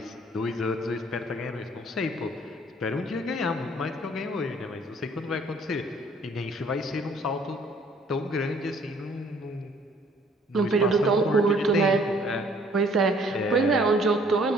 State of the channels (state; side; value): normal; both; correlation 0.59